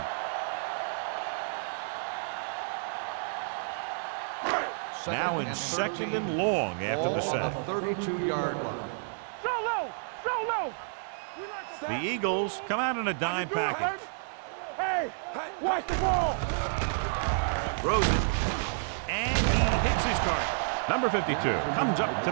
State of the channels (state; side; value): silent; left; digital silence